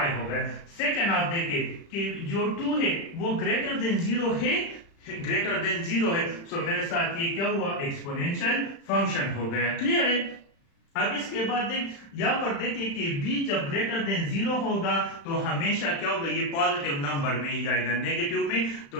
हो गया। सेकंड आप देखिए कि जो 2 है वो ग्रेटर देन 0 है, ग्रेटर देन 0 है। सो मेरे साथ ये क्या हुआ, एक्सपोनेंशियल फंक्शन हो गया। क्लियर है? अब इसके बाद देख, यहाँ पर देखिए कि b जब ग्रेटर देन 0 होगा तो हमेशा क्या होगा, ये पॉजिटिव नंबर में ही जाएगा, नेगेटिव में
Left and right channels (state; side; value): late; right; 35 ms